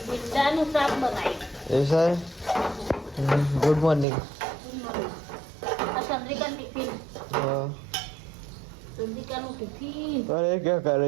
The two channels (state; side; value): drops out; left; at 4.0 s